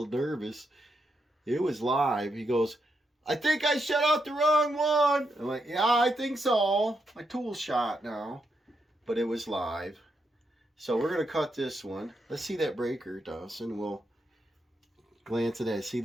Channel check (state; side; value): normal; both; correlation 0.82